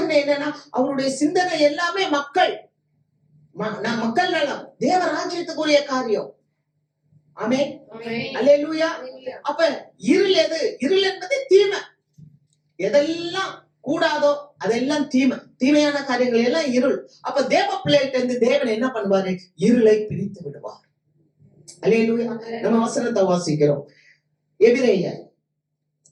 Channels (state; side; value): identical; both; correlation 1.00